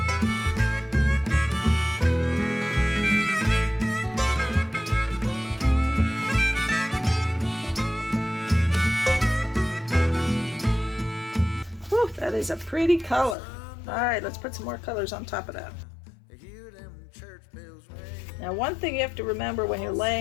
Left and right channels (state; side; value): drops out; right; at 13.4 s